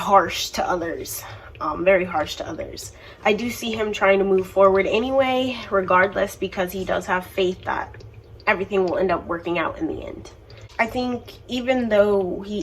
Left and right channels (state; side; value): identical; both; correlation 1.00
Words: to others, very harsh to others. I do see him trying to move forward anyway, regardless, because he does have faith that everything will end up working out in the end. I think even though he